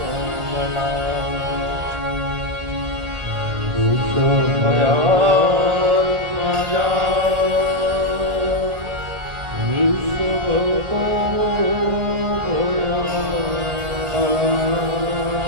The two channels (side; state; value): left; late; 1.8 ms